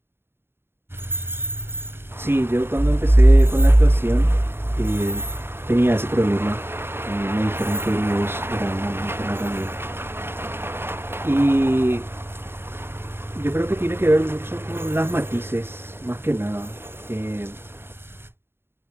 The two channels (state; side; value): late; left; 0.11 ms